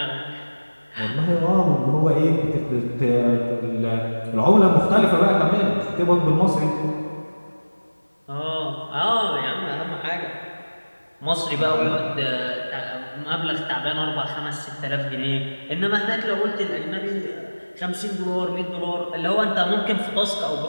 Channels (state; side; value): inverted; both; correlation -1.00